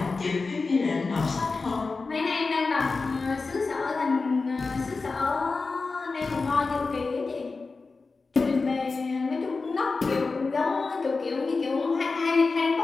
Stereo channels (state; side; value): quieter; right; 4.1 dB